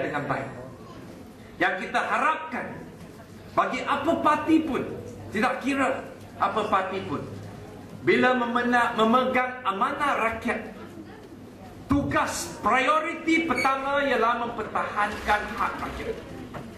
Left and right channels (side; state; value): both; identical; correlation 1.00